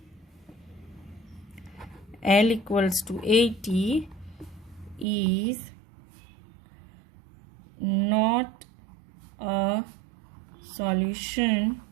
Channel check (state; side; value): drops out; left; at 5.1 s